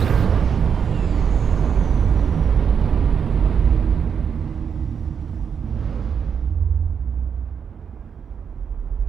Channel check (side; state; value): left; quieter; 7.0 dB